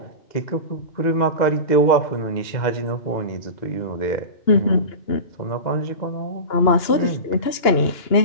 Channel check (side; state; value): right; late; 2.9 ms